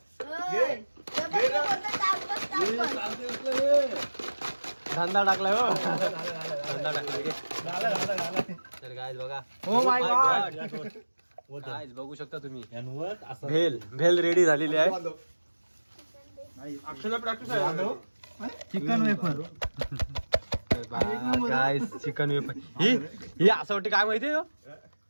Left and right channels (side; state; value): both; inverted; correlation -1.00